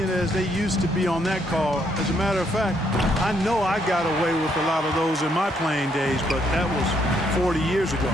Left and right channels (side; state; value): both; normal; correlation 0.72